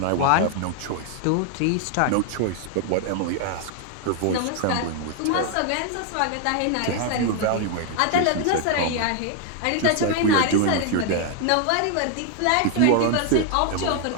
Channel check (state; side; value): different; both; correlation 0.00